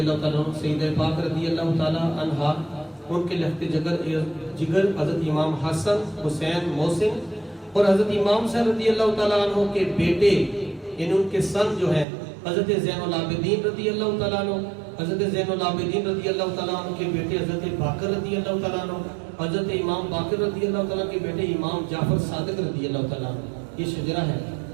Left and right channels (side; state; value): left; drops out; at 12.1 s